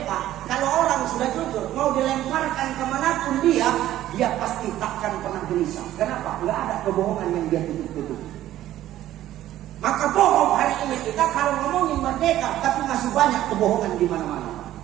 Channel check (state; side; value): quieter; left; 13.5 dB